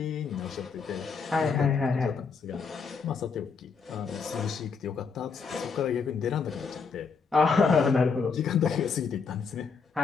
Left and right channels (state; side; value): quieter; right; 5.3 dB